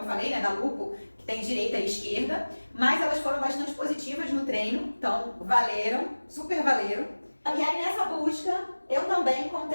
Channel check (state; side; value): inverted; both; correlation -1.00